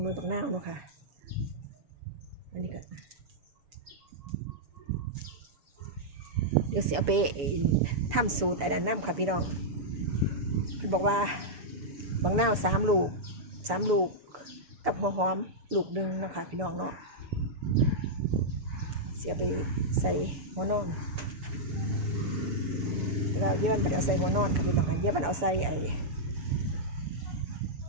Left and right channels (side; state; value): left; late; 6.9 ms